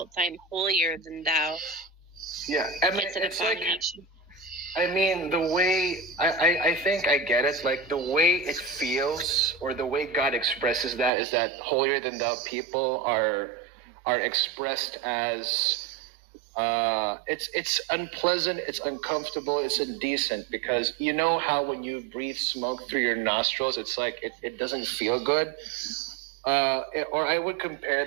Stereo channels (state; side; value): drops out; left; at 11.1 s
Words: I am holier than thou. Yeah, I mean, it's like, I mean, the way, I think I get it, like, the way it feels, or the way God expresses that, is that holier than thou people are expressed as, it's unpleasant, it's uncomfortable, it's indecent, because you know how when you breathe smoke through your nostrils, it's like, it doesn't feel good. Or I would compare